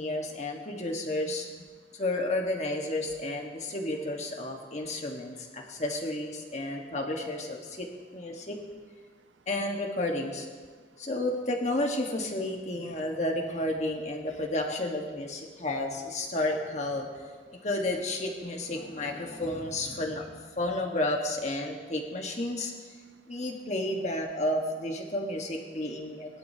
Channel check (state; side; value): normal; both; correlation 0.35